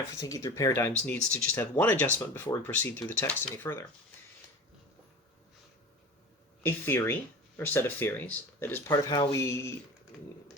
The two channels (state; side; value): normal; both; correlation 0.34